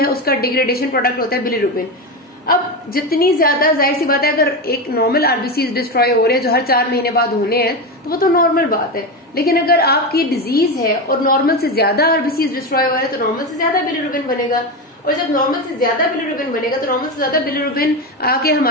उसका डिग्रेडेशन प्रोडक्ट होता है बिलिरुबिन। अब जितनी ज्यादा, जाहिर सी बात है अगर एक नॉर्मल आरबीसी डिस्ट्रॉय हो रहे हैं जो हर 4 महीने बाद होने हैं तो वो तो नॉर्मल बात है। लेकिन अगर आपकी डिजीज है और नॉर्मल से ज्यादा आरबीसी डिस्ट्रॉय हो रहे हैं तो नॉर्मल से ज्यादा बिलिरुबिन बनेगा, और जब नॉर्मल से ज्यादा बिलिरुबिन बनेगा तो नॉर्मल से ज्यादा बिलिरुबिन आके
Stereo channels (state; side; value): normal; both; correlation 0.16